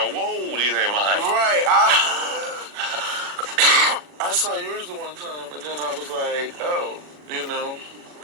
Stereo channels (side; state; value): left; late; 40 ms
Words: mine. Right. I saw yours the one time, and then I was like, oh, you know.